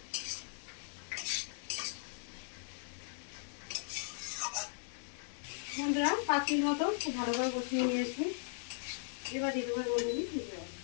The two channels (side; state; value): right; silent; 52 dB below the other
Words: বন্ধুরা 5 মিনিট মতো খুব ভালো করে কষিয়ে নিয়েছি। এবার দিয়ে দেবো মধ্যে জল।